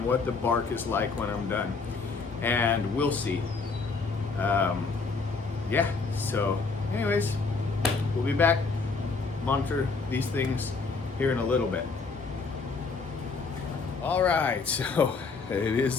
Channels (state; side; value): quieter; right; 4.5 dB